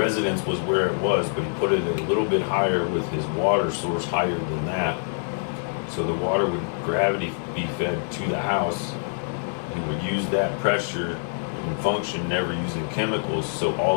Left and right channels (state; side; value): silent; right; 62 dB below the other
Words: was where it was, but he put it a little bit higher with his water source higher than that. So the water would gravity be fed to the house. He would use that pressure and function, never using chemicals. So